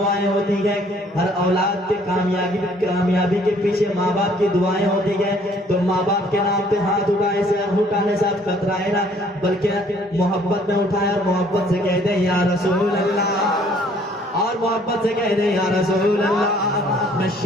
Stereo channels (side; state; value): both; normal; correlation 0.60